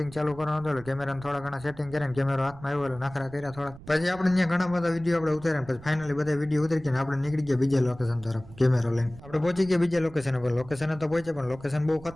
ચાલુ કરવાનું હતું. કેમેરાને થોડા ઘણા સેટિંગ કરીને કેમેરો હાથમાં આવ્યો એટલે નખરા કર્યા થોડા. પછી આપણે ત્યાં ઘણા બધા વિડીયો આપણે ઉતાર્યા. પછી ફાઇનલી બધા વિડીયો ઉતરી ગયા આપણે નીકળી ગયા બીજા લોકેશન તરફ કેમેરો લઈને. આપણે પહોંચી ગયા બીજા લોકેશન પર. લોકેશન તો પહોંચ્યા પણ લોકેશન બહુ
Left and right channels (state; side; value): noise; right; rumble, 19 dB below the sound